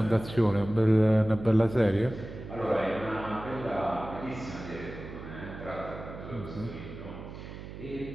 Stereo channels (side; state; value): right; noise; hum, 12 dB below the sound